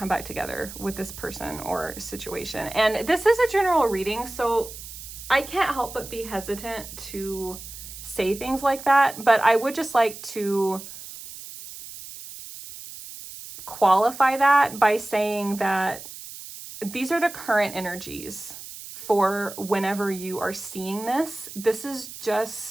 back together with this person or situation. And this is a general reading, so I can't help but be hesitant to say things like that, but I would just like to qualify that by saying that these are the current energies for whenever you are seeing this. This is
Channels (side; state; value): right; noise; hiss, 13 dB below the sound